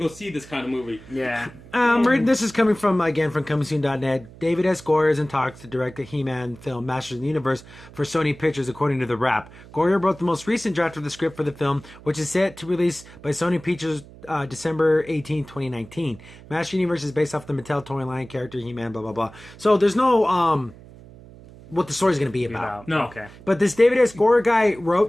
see this kind of movie. Yeah. This is coming from comingsoon.net. David S. Goyer is in talks to direct the He-Man film Masters of the Universe for Sony Pictures, according to The Wrap. Goyer wrote the most recent draft of the script for the film, which is set to release by Sony Pictures December 18, 2019. Masters of the Universe is based off the Mattel toy line character He-Man, blah, blah, blah. So there's no what the story's going to be about. No. Okay. But this David S. Goyer guy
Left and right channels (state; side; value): noise; right; hum, 20 dB below the sound